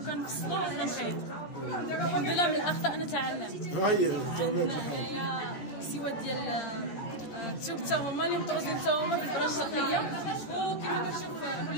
وكنخيط. الحمد لله من الاخطاء نتعلم. هاهي تمام. هنايا سوات ديال الثوب حتى هما اللي مطروزين حتى هما بالبرا الشرقيه. وكما كتشوف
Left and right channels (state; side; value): late; right; 13 ms